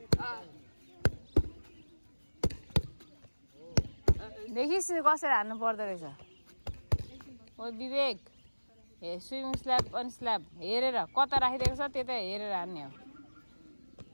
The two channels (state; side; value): inverted; both; correlation -1.00